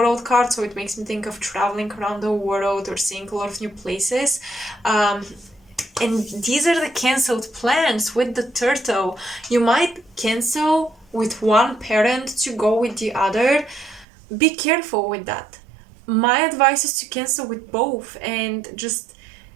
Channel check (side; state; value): left; drops out; at 14.1 s